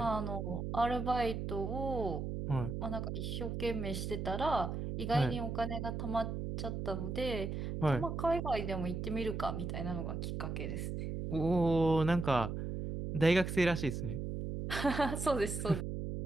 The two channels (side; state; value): right; noise; hum, 4 dB below the sound